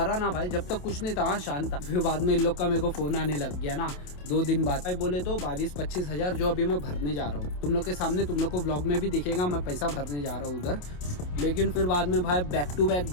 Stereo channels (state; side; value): late; right; 28 ms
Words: ना भाई, जब तक कुछ नहीं था शांत था, फिर बाद में इन लोग का मेरे को फ़ोन आने लग गया ना 2 दिन बाद। भाई बोले तो 22-25 हज़ार जो अभी मैं भरने जा रहा हूँ, तुम लोग के सामने, तुम लोग को व्लॉग में भी दिखेगा मैं पैसा भरने जा रहा हूँ उधर। लेकिन फिर बाद में भाई बैक टू